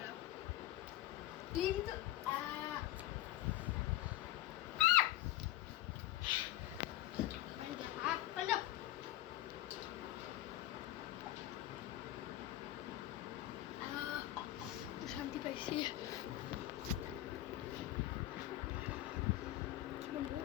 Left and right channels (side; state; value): right; quieter; 15.1 dB